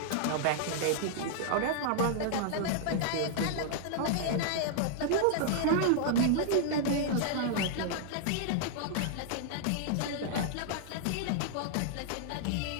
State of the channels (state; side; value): different; both; correlation -0.01